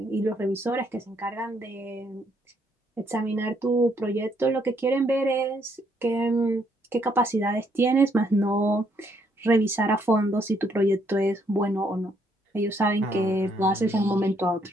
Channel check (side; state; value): both; normal; correlation 0.71